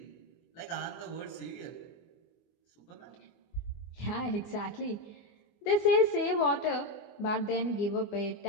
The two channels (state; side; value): late; right; 24 ms